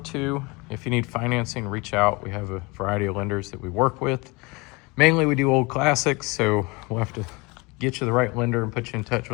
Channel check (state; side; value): quieter; right; 26.5 dB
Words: If you need financing, reach out. We have a variety of lenders that we work with. Mainly we do old classics, so we'll have to get you the right lender and put you in touch